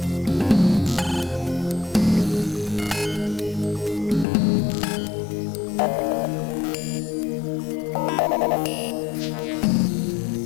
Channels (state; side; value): drops out; right; at 4.2 s